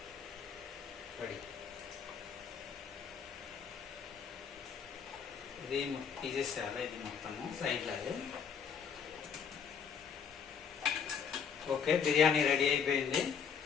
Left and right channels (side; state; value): right; quieter; 7.0 dB